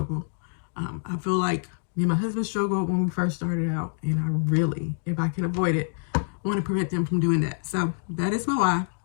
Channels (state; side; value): silent; right; digital silence